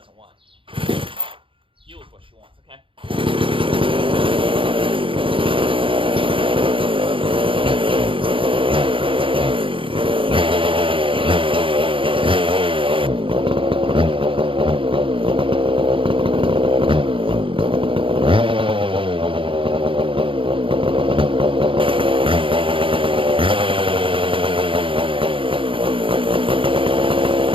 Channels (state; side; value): late; left; 0.25 ms